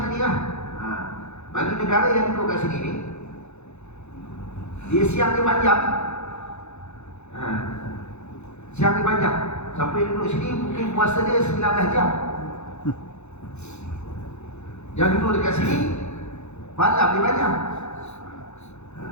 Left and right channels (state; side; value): late; right; 0.81 ms